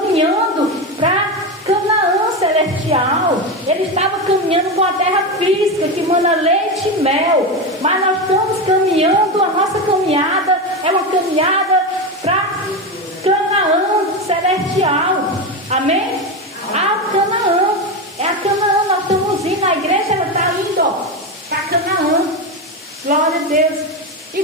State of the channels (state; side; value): normal; both; correlation 0.16